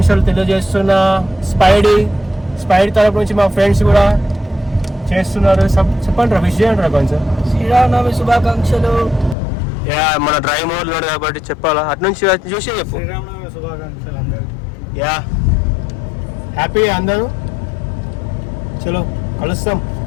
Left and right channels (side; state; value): right; drops out; at 9.3 s